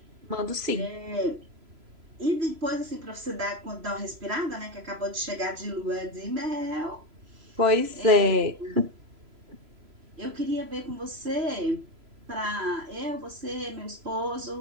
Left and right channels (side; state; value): left; late; 3.0 ms